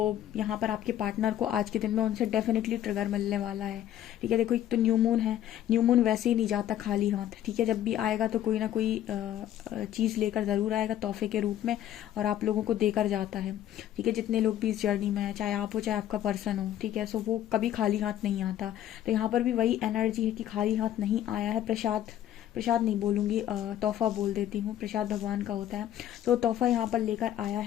यहाँ पर आपके पार्टनर को आज के दिन में उनसे डेफिनेटली ट्रिगर मिलने वाला है, ठीक है। देखो एक तो न्यू मून है, न्यू मून वैसे ही नहीं जाता खाली हाथ, ठीक है। जब भी आएगा तो कोई ना कोई चीज़ लेकर ज़रूर आएगा तोहफे के रूप में, और आप लोगों को देकर जाता है, ठीक है। जितने लोग भी इस जर्नी में है, चाहे आप हो चाहे आपका पर्सन हो, ठीक है, सो वो कभी खाली हाथ नहीं आता। तो यहाँ पर भी वही एनर्जी है कि खाली हाथ नहीं आया है। प्रसाद, प्रसाद नहीं बोलूँगी, तोहफा बोल देती हूँ, प्रसाद भगवान का होता है। तो तोहफा यहाँ पर लेकर आया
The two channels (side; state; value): right; quieter; 11.7 dB